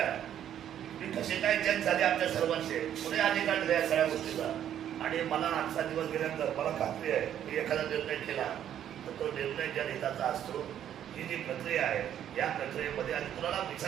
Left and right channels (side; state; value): left; quieter; 10.3 dB